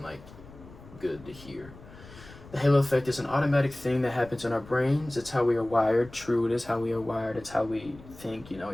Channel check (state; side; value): noise; left; rumble, 19 dB below the sound